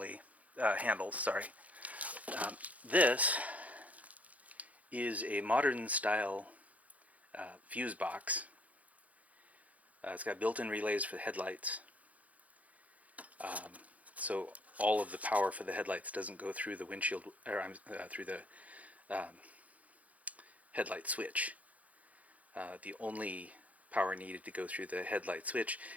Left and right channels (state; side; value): late; left; 0.070 ms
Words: handles, sorry. This is a modern style fuse box. It's got built-in relays for the headlights. So all of the power for the headlights doesn't go through the windshield, or through the headlight switch. The only power needed to go through the headlight switch